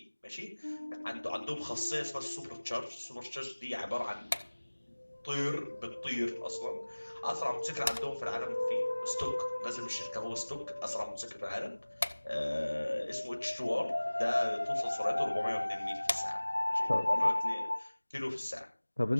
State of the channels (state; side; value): inverted; both; correlation -1.00